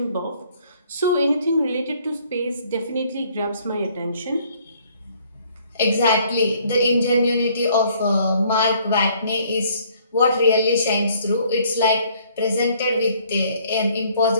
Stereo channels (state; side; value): inverted; both; correlation -0.62